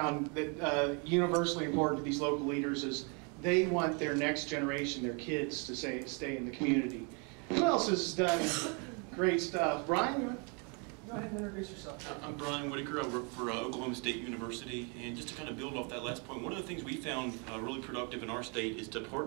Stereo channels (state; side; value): quieter; left; 34.7 dB